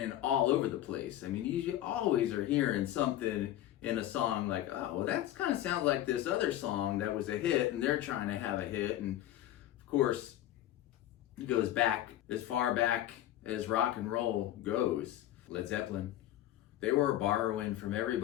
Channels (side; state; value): right; quieter; 13.2 dB